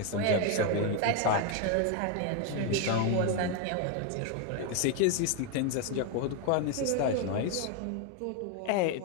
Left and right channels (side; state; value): both; different; correlation 0.01